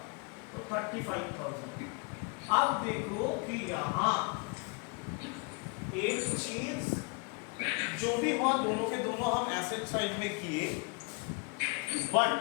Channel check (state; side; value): quieter; right; 30.8 dB